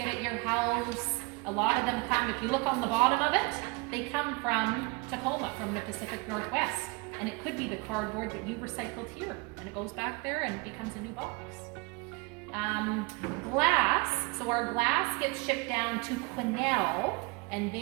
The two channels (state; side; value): quieter; left; 27.4 dB